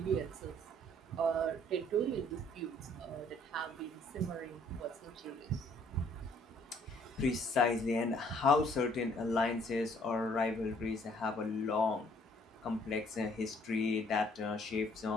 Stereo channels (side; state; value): both; normal; correlation 0.61